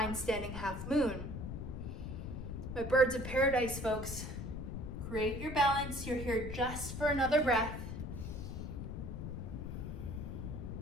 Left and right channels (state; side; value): noise; left; rumble, 6 dB below the sound